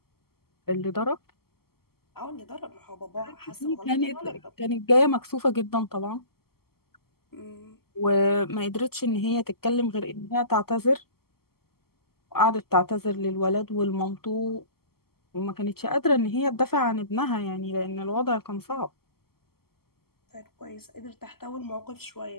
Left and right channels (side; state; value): right; late; 0.95 ms